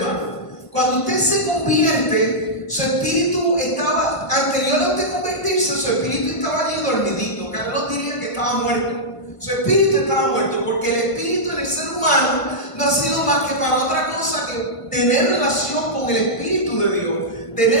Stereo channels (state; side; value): late; right; 1.5 ms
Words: Cuando usted se convierte, su espíritu estaba, anterior a usted convertirse, su espíritu estaba allí dormidito. Carlos diría que estaba muerto. Su espíritu estaba muerto, porque el espíritu en el ser humano no ha sido más que para otra cosa que tener relación con el Espíritu de Dios,